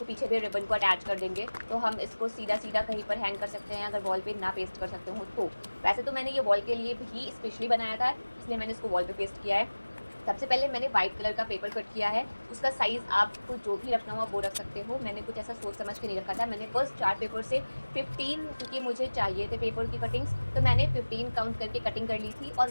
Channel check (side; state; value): both; inverted; correlation -1.00